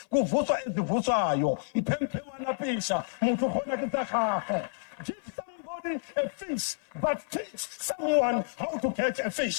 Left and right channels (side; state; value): right; silent; 55 dB below the other